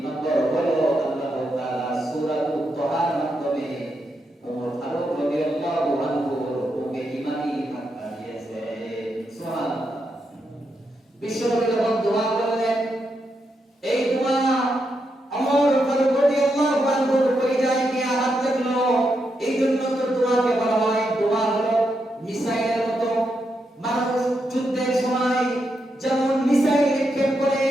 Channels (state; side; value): normal; both; correlation 0.83